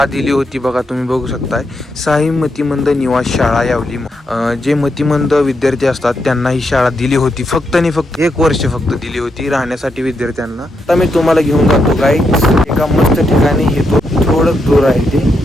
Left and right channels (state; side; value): normal; both; correlation 0.82